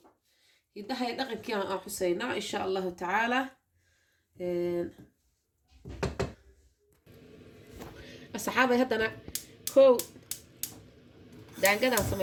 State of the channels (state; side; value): identical; both; correlation 1.00